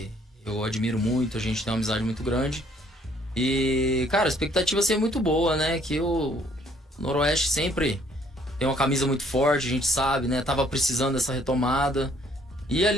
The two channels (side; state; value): both; normal; correlation 0.63